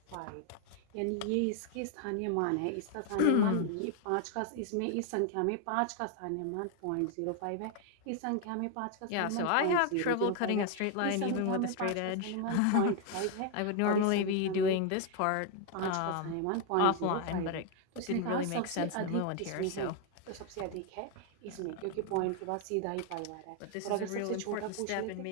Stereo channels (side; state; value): both; different; correlation 0.01